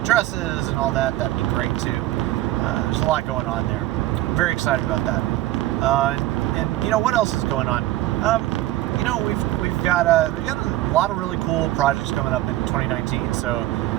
and all that, that'd be great too. There's a lot going on there. I'm very excited about that. And what else is going on? We've got a lot of really cool projects coming up in 2019. So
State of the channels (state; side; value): quieter; left; 15.7 dB